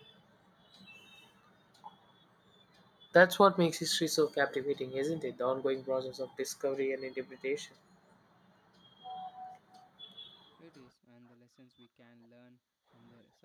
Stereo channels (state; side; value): identical; both; correlation 1.00